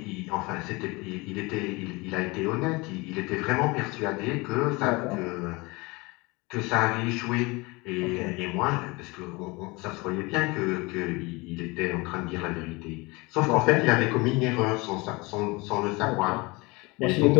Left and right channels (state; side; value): quieter; right; 25.0 dB